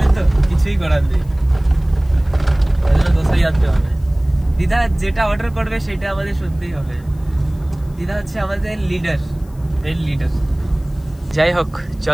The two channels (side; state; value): left; noise; hiss, 29 dB below the sound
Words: তো, কিছুই করার নেই, দোসাই আনতে হবে। দিদা যেটা অর্ডার করবে সেটা আমাদের শুনতেই হবে। দিদা হচ্ছে আমাদের লিডার, মেন লিডার। যাই হোক,